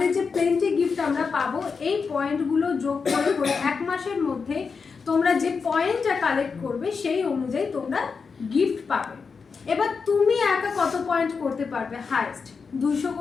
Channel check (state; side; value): quieter; right; 5.3 dB